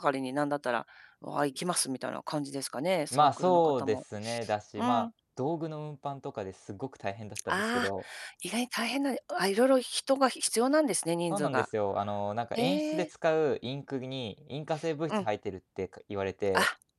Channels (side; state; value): both; identical; correlation 1.00